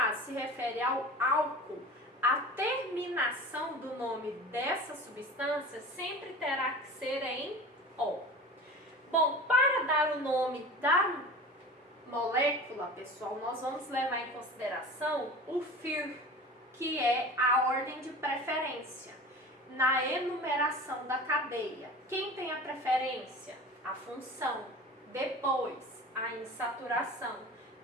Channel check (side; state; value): both; normal; correlation 0.36